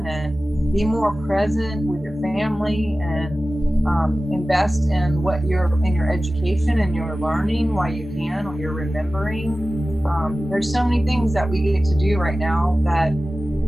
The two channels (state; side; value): normal; both; correlation 0.96